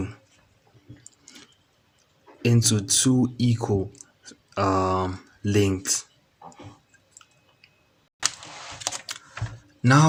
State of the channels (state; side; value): identical; both; correlation 1.00